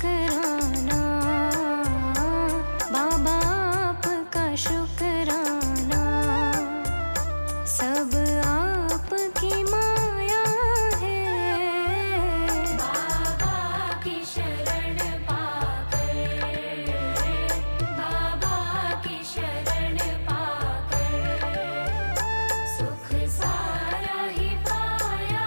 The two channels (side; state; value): both; inverted; correlation -1.00